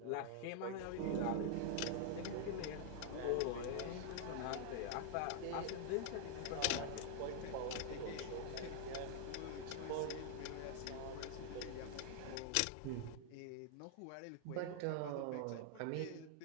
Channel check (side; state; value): both; different; correlation 0.00